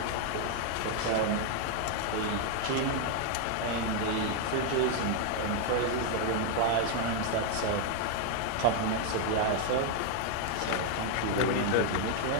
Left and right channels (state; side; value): different; both; correlation 0.00